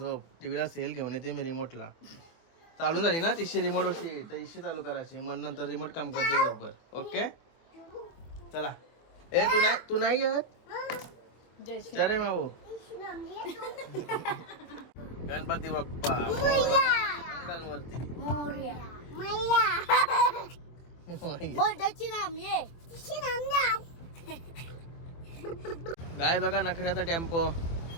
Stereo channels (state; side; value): late; right; 24 ms